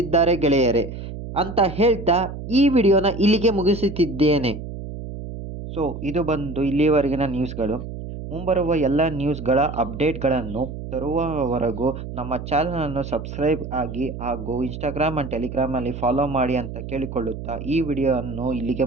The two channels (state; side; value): noise; right; hum, 9 dB below the sound